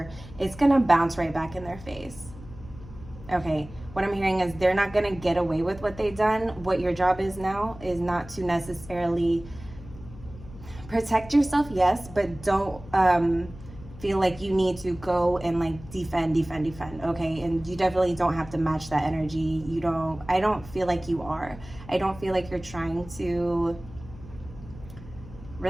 it's gonna bounce right back in their face. Okay, what I'm hearing is they're not gonna get away with what they've done. What your job is now is not to necessarily protect yourself, yes, but don't feel like you need to go and like defend, okay? And you definitely don't have to match that energy. I don't feel like you are. I don't feel like you're trying to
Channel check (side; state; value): left; noise; hum, 17 dB below the sound